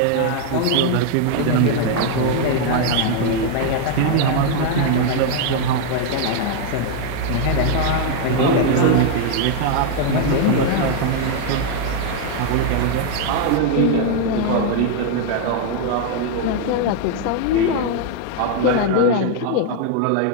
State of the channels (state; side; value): different; both; correlation 0.00